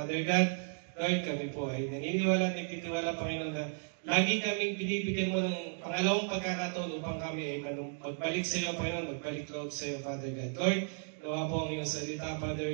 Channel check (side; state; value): left; silent; 55 dB below the other